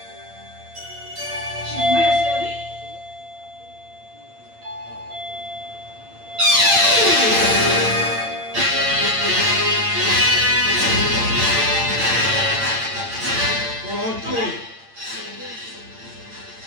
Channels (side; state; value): left; late; 8.8 ms